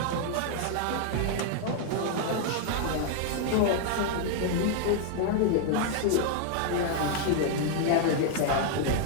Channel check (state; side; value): different; both; correlation 0.00